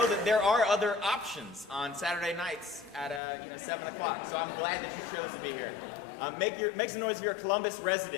that there are other options on Saturday nights at 7 o'clock. So I'm glad that you chose to be here. Make some noise if you're a Columbus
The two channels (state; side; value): drops out; right; at 3.2 s